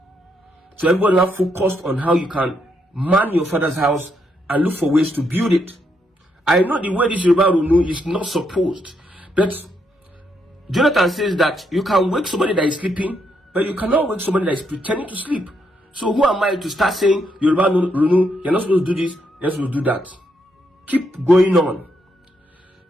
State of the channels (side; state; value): both; normal; correlation 0.77